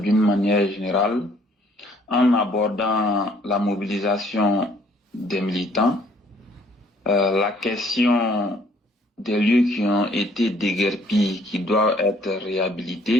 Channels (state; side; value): normal; both; correlation 0.61